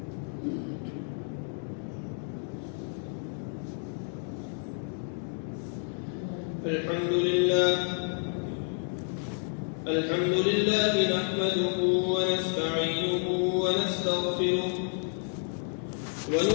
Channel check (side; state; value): right; silent; 58 dB below the other